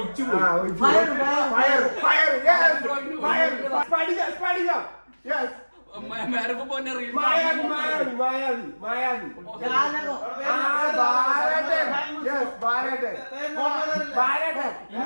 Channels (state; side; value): inverted; both; correlation -1.00